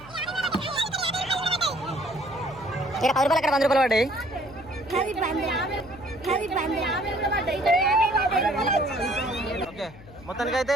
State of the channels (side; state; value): left; noise; hum, 20 dB below the sound